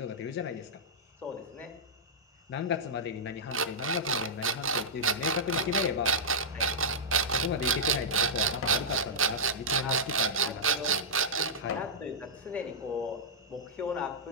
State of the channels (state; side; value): normal; both; correlation -0.11